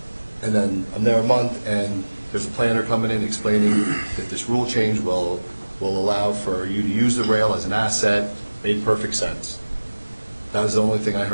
And then I'm there a month, and there's a planner coming in explaining that this rule change will allow for you to use the rail as an asset. Made perfect sense. That was the only thing I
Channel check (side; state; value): both; inverted; correlation -1.00